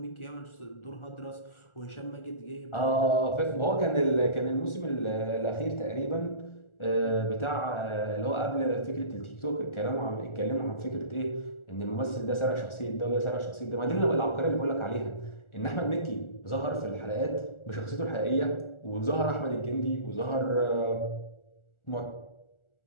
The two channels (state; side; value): late; right; 1.4 ms